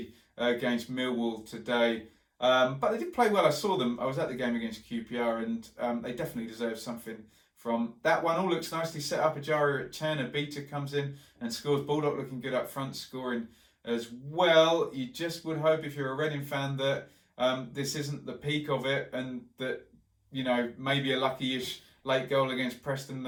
against Millwall today. But they did play well. I saw them. I was at the game against QPR, and they definitely deserve something from that one. All looks nicely set up. Ejaria at 10. A beater comes in and scores. Baldock looking good up front, scoring as well. You just would hope, if you're a Reading fan, that this isn't the peak of it, and that, you know, maybe a lucky-ish late goal against Preston,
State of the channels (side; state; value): both; identical; correlation 1.00